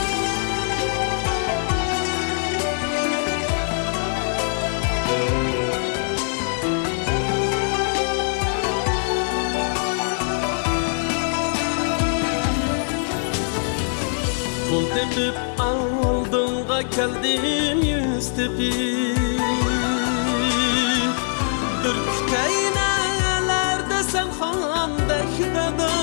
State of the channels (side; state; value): right; silent; digital silence